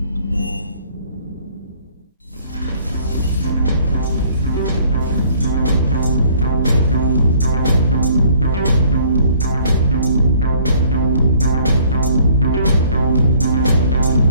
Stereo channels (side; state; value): both; inverted; correlation -0.59